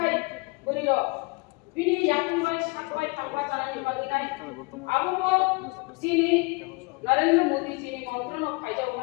बुरी रख बिनि याकुंबाय साकबाय थांबा जानानै बागिनाय आबो जिनि नरेंद्र मोदी जी मंत्रन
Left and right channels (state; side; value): quieter; right; 28.2 dB